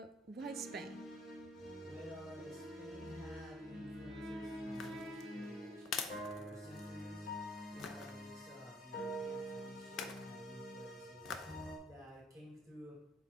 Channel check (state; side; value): normal; both; correlation 0.62